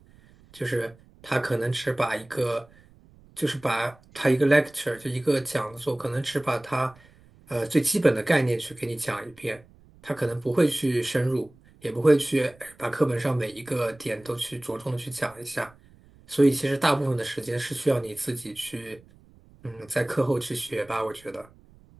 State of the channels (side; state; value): right; noise; rumble, 26 dB below the sound